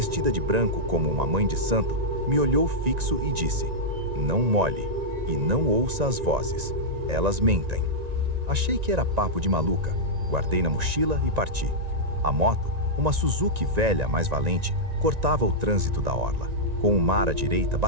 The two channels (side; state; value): left; late; 1.9 ms